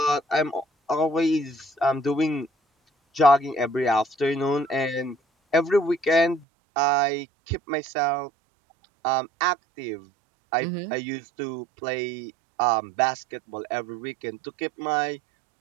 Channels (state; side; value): drops out; left; at 6.5 s